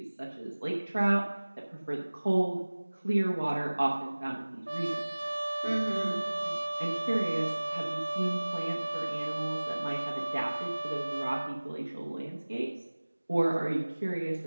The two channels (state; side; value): inverted; both; correlation -1.00